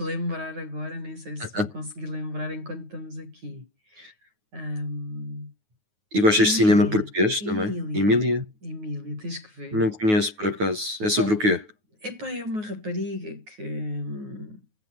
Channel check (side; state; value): left; late; 9.4 ms